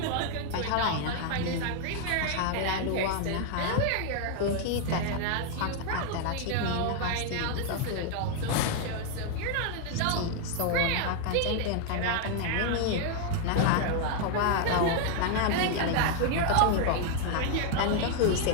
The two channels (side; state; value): both; different; correlation 0.00